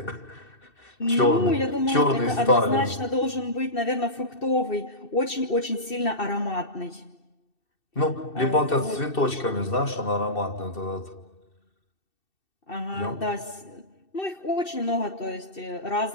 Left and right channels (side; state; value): right; late; 2.7 ms